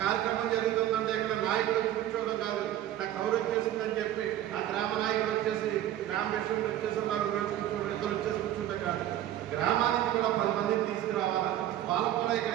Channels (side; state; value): left; quieter; 12.4 dB